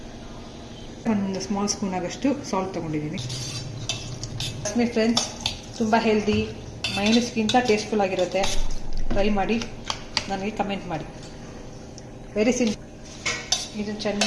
ಒಂದು ಸ್ಮಾಲ್ ಸ್ಪೂನ್ ಆಗಷ್ಟು ಸಾಲ್ಟ್ ತೊಗೊಂಡಿದ್ದೀನಿ. ಫ್ರೆಂಡ್ಸ್ ತುಂಬ ಹೆಲ್ದಿ, ಮೈನಸ್ಗಿಂತ ಟೇಸ್ಟ್ಫುಲ್ ಆಗಿರುತ್ತೆ. ಟ್ರೈ ಮಾಡಿ, ನನಗೆ ಕಮೆಂಟ್ ಮಾಡಿ. Very simple. ಇದನ್ನು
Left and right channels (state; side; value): identical; both; correlation 1.00